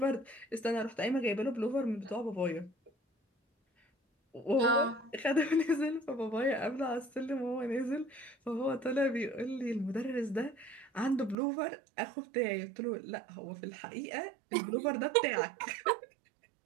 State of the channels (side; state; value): left; drops out; at 11.4 s